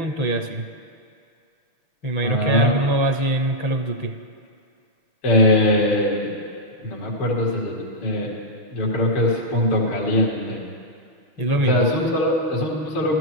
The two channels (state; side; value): late; right; 6.1 ms